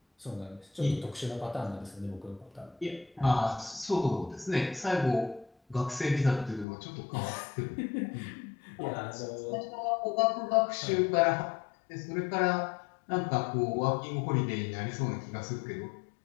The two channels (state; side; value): drops out; right; at 6.7 s